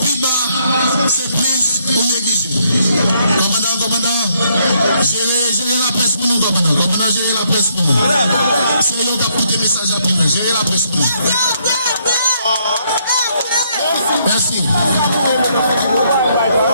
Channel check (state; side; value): inverted; both; correlation -0.72